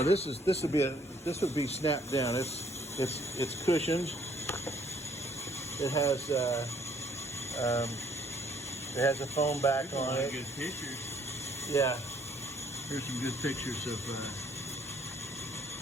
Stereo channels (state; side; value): normal; both; correlation 0.63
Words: this would be snapped down. It's cushioned. It has a foam back on it. Good pictures. Yeah. Here's some good pictures of.